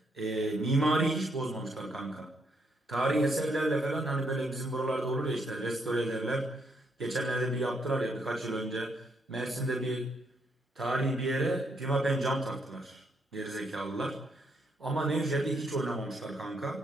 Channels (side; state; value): both; normal; correlation 0.75